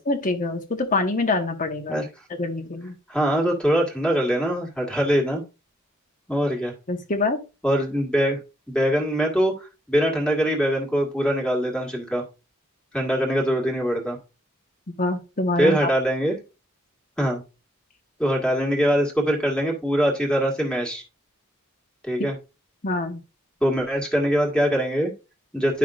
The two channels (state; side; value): normal; both; correlation 0.73